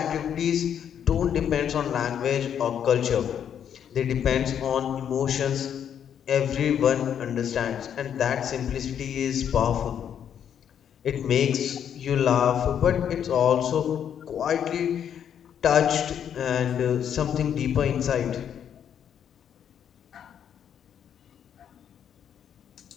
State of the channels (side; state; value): right; quieter; 8.9 dB